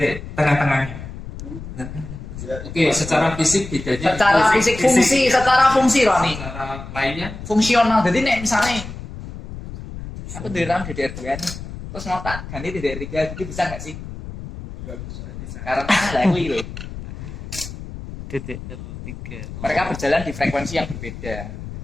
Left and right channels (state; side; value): noise; left; rumble, 11 dB below the sound